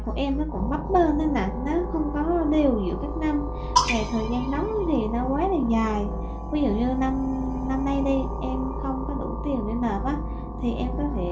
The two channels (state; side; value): identical; both; correlation 1.00